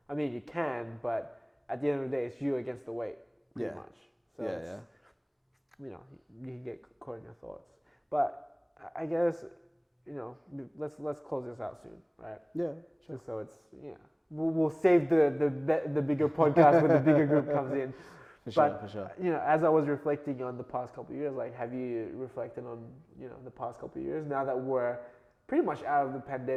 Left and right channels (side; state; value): both; identical; correlation 1.00